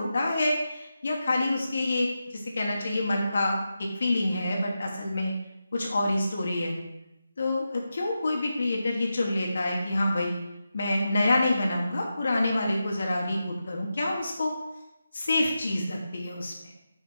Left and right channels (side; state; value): both; inverted; correlation -0.90